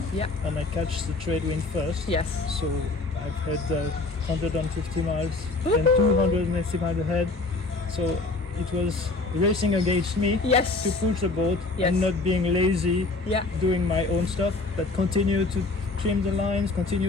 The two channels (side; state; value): right; quieter; 3.4 dB